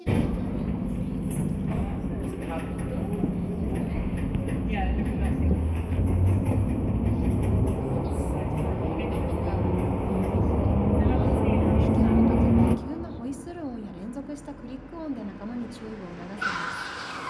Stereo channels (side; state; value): both; identical; correlation 1.00